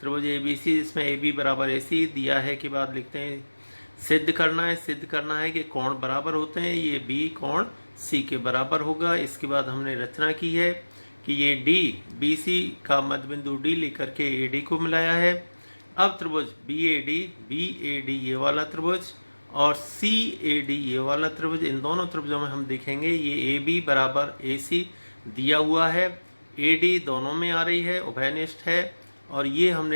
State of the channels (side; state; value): both; inverted; correlation -1.00